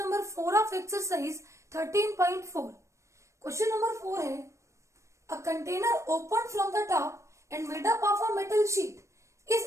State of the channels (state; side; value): late; left; 0.15 ms